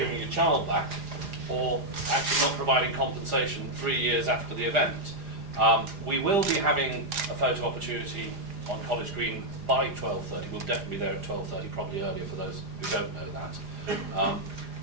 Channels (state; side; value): late; left; 4.9 ms